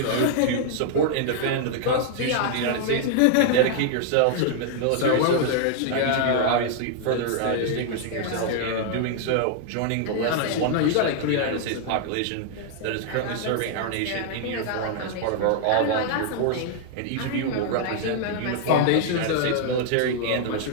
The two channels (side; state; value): both; different; correlation 0.00